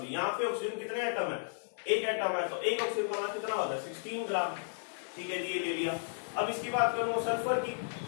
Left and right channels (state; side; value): silent; right; 55 dB below the other